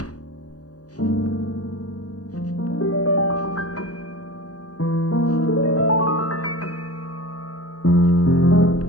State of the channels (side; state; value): right; late; 0.67 ms